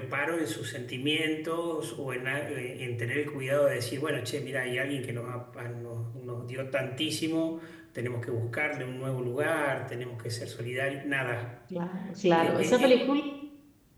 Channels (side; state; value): both; identical; correlation 1.00